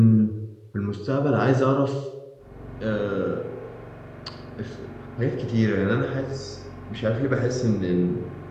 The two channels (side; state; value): both; identical; correlation 1.00